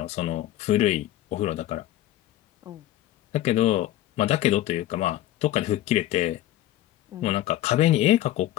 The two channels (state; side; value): quieter; right; 14.1 dB